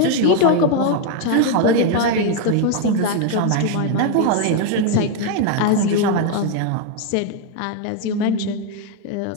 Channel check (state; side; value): different; both; correlation 0.01